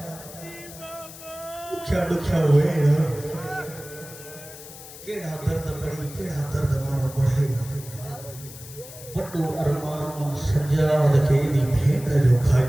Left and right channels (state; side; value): noise; left; hiss, 16 dB below the sound